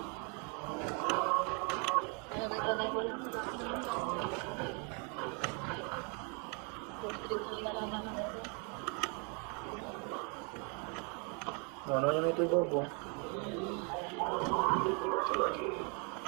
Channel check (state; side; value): quieter; left; 35.6 dB